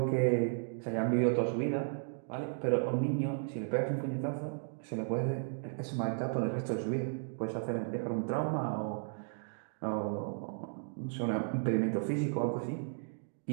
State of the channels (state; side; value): silent; left; digital silence